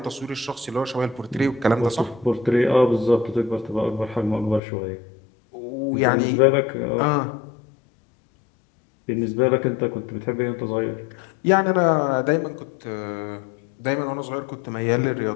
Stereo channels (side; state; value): right; drops out; at 4.6 s